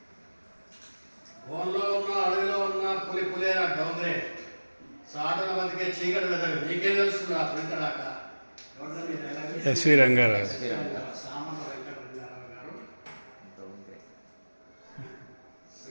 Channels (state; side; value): inverted; both; correlation -1.00